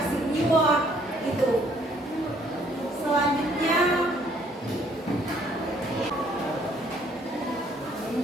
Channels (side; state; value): both; normal; correlation 0.63